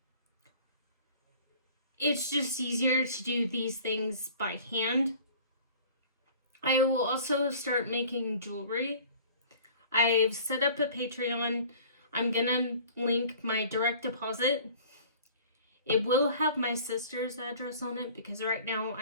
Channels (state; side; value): inverted; both; correlation -0.47